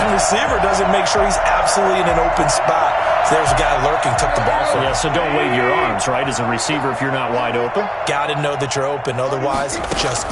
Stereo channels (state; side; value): identical; both; correlation 1.00